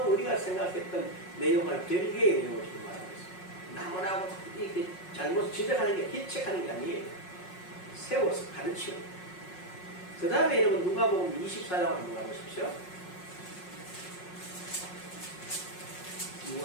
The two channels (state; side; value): late; right; 5.5 ms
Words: 우리가 생각했던 내용을 별개의 내용을 지금 말하고 있어요. 나무라고 이렇게 잘못 지적하는 게 희책하는 게 아니에요. 세워서 가르치는. 그 다음에 여러분 누가복음 24장을 한번 가보십시오.